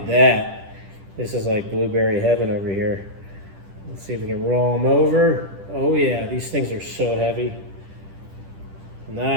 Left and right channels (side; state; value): left; late; 10 ms